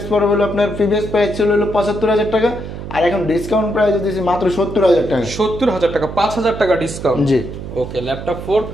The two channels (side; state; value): right; noise; hum, 9 dB below the sound